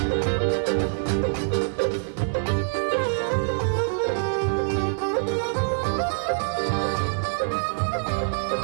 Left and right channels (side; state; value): left; silent; digital silence